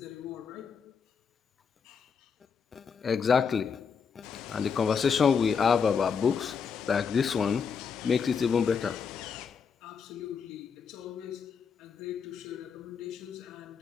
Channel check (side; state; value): right; quieter; 6.2 dB